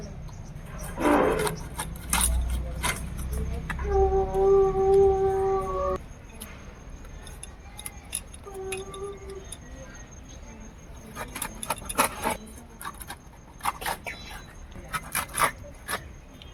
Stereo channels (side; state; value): both; identical; correlation 1.00